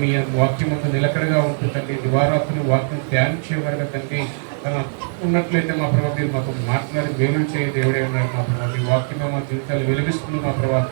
మీ వాక్యం అంతా నిలకడగా ఉంటుందండి. దివారాత్రులు వాక్యం ధ్యానించేవారుగా తండ్రి ఉన్నట్లయితే మా ప్రభావ మీరు మాకు మాట్లాడి వేలు చేయ దేవుడే ఉన్నారు మా ప్రభావ. మీ వాక్యమే మా జీవితాలు వెలిగిస్తుంది మా ప్రభావ.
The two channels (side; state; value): left; silent; digital silence